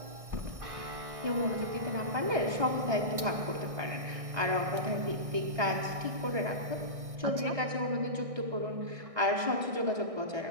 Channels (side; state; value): left; late; 1.6 ms